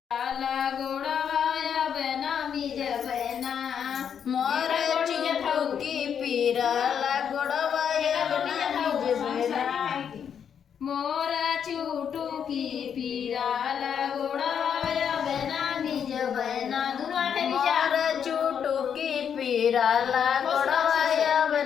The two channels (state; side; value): quieter; right; 7.9 dB